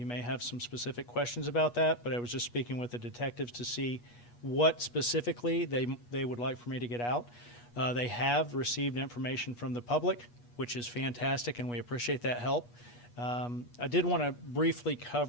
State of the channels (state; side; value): late; right; 8.3 ms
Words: may have some specific questions about that, but I was just speaking with the detectives to see what specifically they would like for me to get out. They have received information from the public, which is fantastic, and we appreciate that help. I did want to briefly